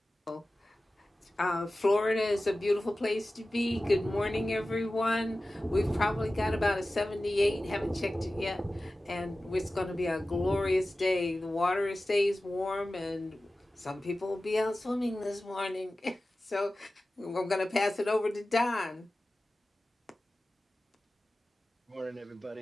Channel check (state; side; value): normal; both; correlation 0.96